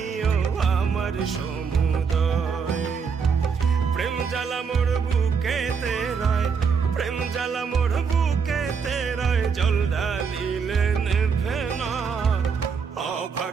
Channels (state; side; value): quieter; left; 5.9 dB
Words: আমার সমুদয়। প্রেম জ্বালা মোর বুকেতে রয়, প্রেম জ্বালা মোর বুকেতে রয়, জল ঢালিলে নেভে না,